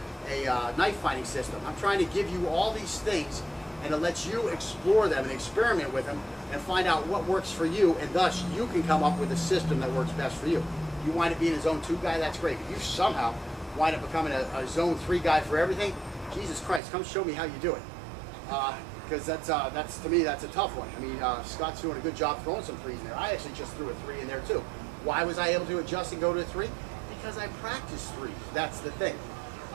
knife fighting system. I'm trying to give you all these things and to let you explore them and experiment with them and find out what works for you, and thus you can come up with a system that works best for you. You wind up being a zone 2 guy, that's great. If you somehow wind up becoming a zone 3 guy for everything, Jesus Christ, come show me how you do it. Because that's to me, that's a tough one. I mean, Scott's doing a good job throwing some 3s in there. I actually just threw a 3 in there too. Why was I able to adjust and go to a 3? Because I practiced 3s. That's the thing.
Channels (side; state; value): left; drops out; at 16.8 s